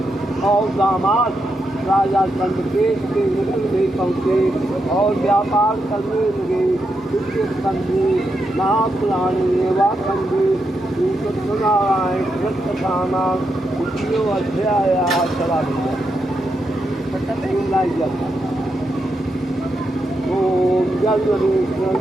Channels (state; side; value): normal; both; correlation 0.84